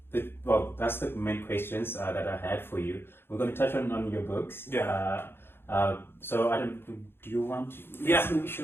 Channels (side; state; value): right; late; 0.11 ms